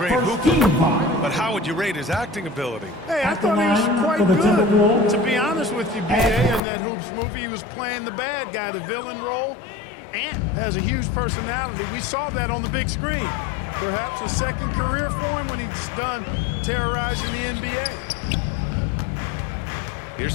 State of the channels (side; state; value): right; drops out; at 6.6 s